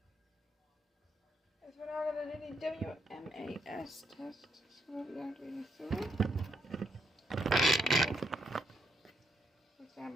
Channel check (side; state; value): both; normal; correlation 0.76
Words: As we're now going to do the WMAS test, so we're going to read through. Stand